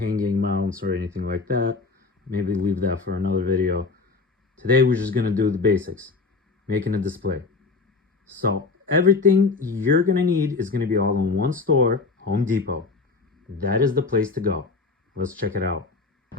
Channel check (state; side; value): quieter; right; 4.2 dB